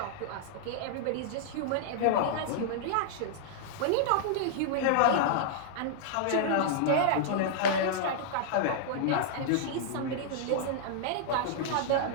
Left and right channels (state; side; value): different; both; correlation -0.01